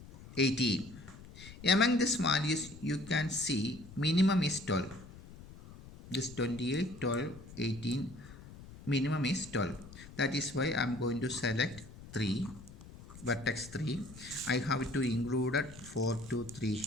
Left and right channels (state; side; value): noise; left; rumble, 17 dB below the sound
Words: 18. Among these values you can see minimum is 12. This 28, 12, 18 minimum is 12. That is why I am going to select 3, vertex 3. I have to include 4 to 3